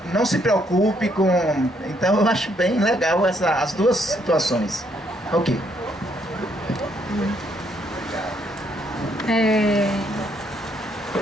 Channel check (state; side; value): normal; both; correlation 0.71